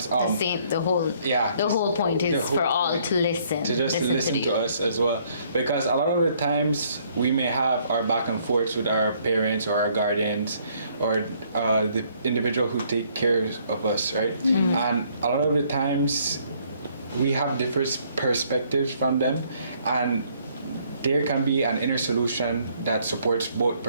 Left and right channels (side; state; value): both; inverted; correlation -0.65